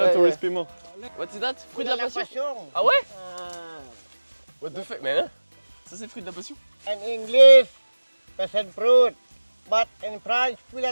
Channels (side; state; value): both; inverted; correlation -1.00